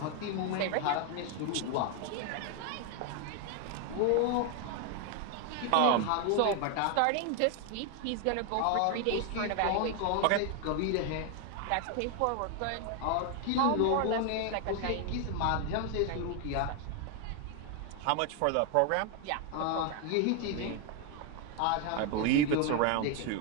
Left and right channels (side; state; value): both; different; correlation 0.01